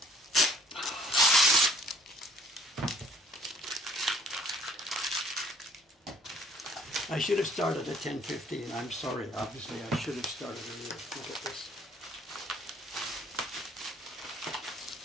I should have started at 10:15. I'm sorry. Obviously, I should have started earlier. Look at this.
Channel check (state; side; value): normal; both; correlation 0.58